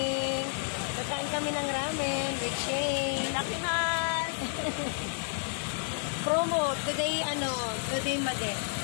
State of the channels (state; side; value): silent; right; 57 dB below the other